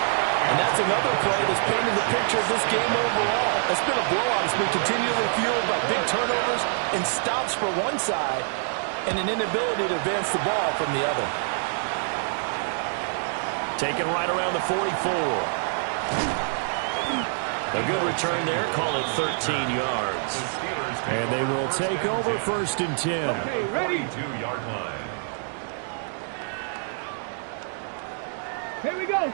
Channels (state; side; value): silent; left; digital silence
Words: And that's another play that's painted the picture of this game overall. It's been a blowout. It's been continually fueled by big turnovers and stops for one side and an inability to advance the ball from the other. Taken right around the 44. A good return there. Call it 13 yards. And they will take over 1st and 10. Okay, ready? 42-yard line. Here we go.